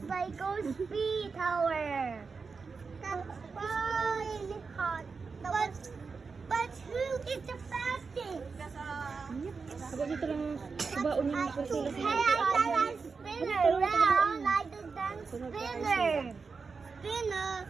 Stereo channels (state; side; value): quieter; left; 4.9 dB